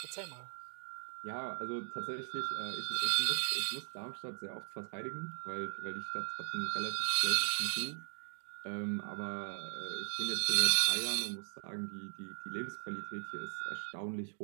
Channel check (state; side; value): silent; left; digital silence